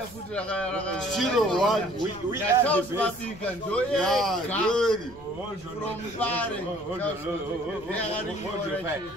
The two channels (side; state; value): left; noise; rumble, 22 dB below the sound